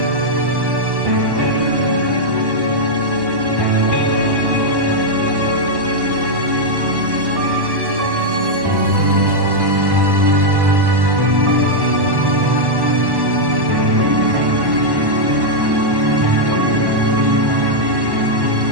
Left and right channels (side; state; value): left; late; 1.1 ms